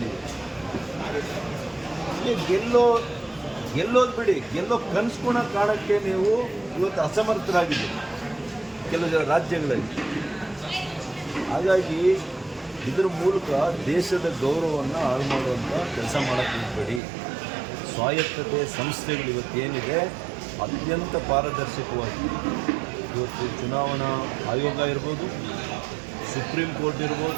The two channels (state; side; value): drops out; left; at 17.0 s